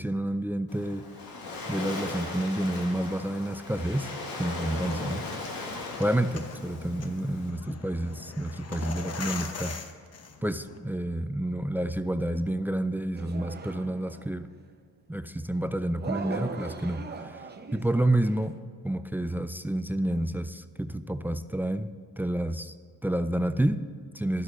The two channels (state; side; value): normal; both; correlation 0.87